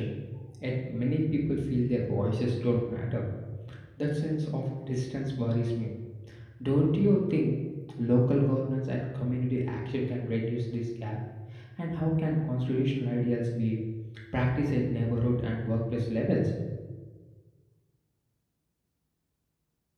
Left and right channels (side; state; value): both; identical; correlation 1.00